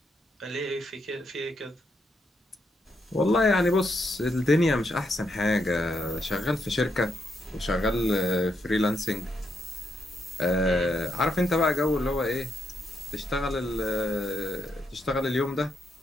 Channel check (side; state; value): both; normal; correlation 0.79